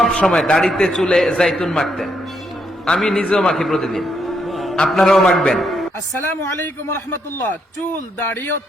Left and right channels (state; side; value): normal; both; correlation 0.76